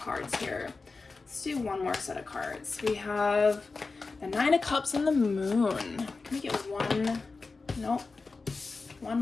here. Let's do one more set of cards. We have the Nine of Cups and the Moon. Can we get one? Nope. One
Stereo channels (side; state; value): right; quieter; 4.0 dB